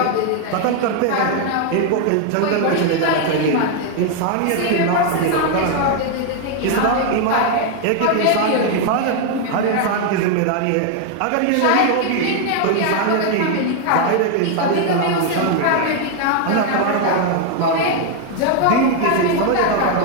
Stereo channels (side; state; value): both; different; correlation 0.00